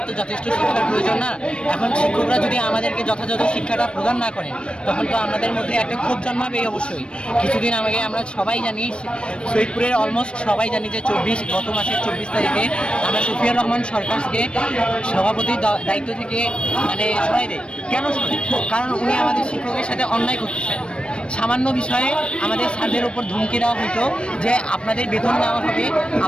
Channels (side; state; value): right; late; 0.057 ms